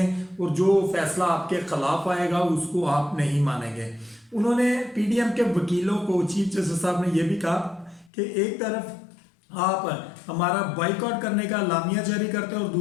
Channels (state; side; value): drops out; right; at 8.1 s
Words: और जो फैसला आपके खिलाफ आएगा उसको आप नहीं मानेंगे। उन्होंने पीडीएम के वकीलों को, चीफ जस्टिस साहब ने यह भी कहा कि एक तरफ आप हमारा बाइकआउट करने का लामिया जारी करते हैं और